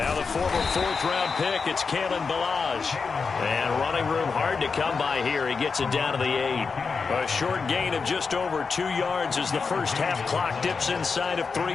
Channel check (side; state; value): right; quieter; 5.0 dB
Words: the former 4th-round pick, it's Kalen Ballage. And running room hard to come by here. He gets it down to the 8. A short gain of just over 2 yards as the first half clock dips inside of 3